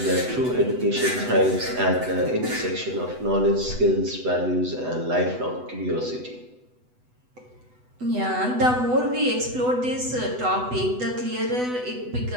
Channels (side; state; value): left; late; 8.0 ms